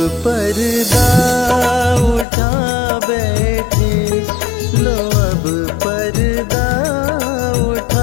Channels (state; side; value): drops out; right; at 2.2 s